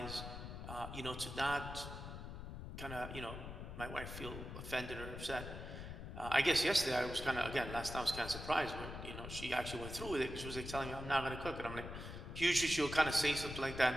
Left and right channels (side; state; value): left; noise; rumble, 8 dB below the sound